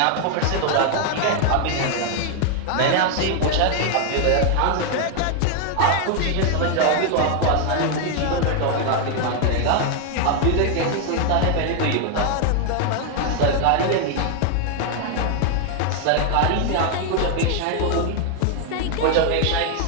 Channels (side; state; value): both; different; correlation 0.00